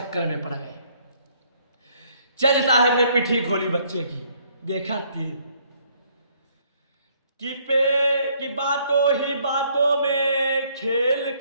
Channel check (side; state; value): both; inverted; correlation -0.65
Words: में पड़ गए। जज साहब ने पिठी खोली बच्चे की, देखा तिल कि बातों ही बातों में खेल